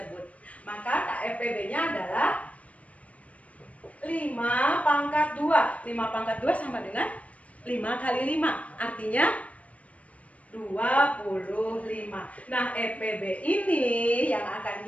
Maka KFPB-nya adalah 5 pangkat 2. 5 pangkat 2 sama dengan 5 kali 5. Artinya 25. Nah, EPB ini yang akan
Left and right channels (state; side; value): late; right; 0.066 ms